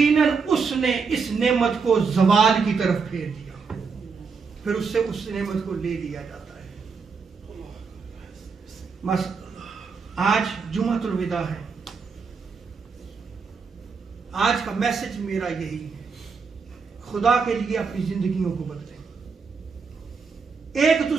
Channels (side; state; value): left; quieter; 5.2 dB